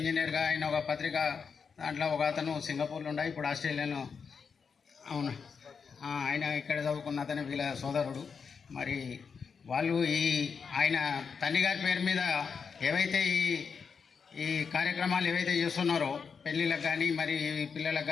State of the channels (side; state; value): right; quieter; 5.9 dB